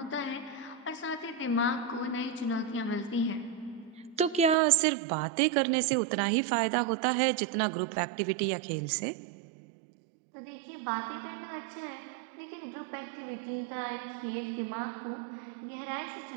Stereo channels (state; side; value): drops out; left; at 4.5 s